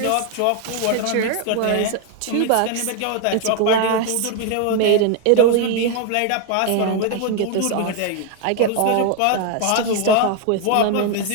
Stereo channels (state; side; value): different; both; correlation 0.00